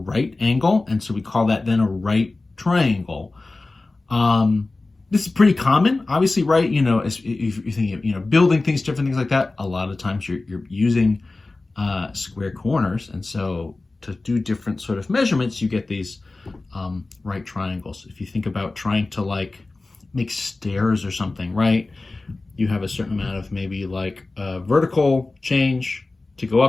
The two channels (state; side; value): quieter; right; 3.3 dB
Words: angle. And so we call that then a right triangle. This is pretty common, obviously, right? You know, if you're thinking of, you know, building things, different things like that, a lot of times you're using square corners. And so to do different sort of measurements, you get these right triangles. If you think about trying to like make stairs or something, right? You have a certain amount of maybe like vertical change to go